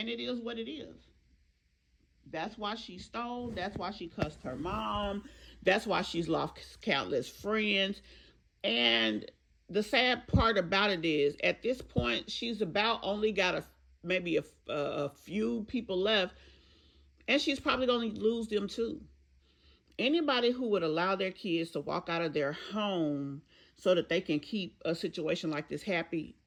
it is what it is. That's why she stole. That's why she cussed her mom. That's why she's lost countless friends. And the sad part about it is, at this point, she's about only got maybe a few people left. And she's probably going to lose them too. Anybody who would allow their kids to walk out of their home so that they can keep a situation like this happy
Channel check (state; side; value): identical; both; correlation 1.00